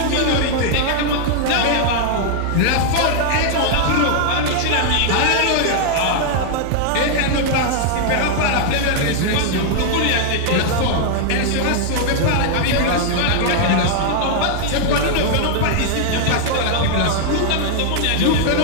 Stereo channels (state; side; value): different; both; correlation 0.00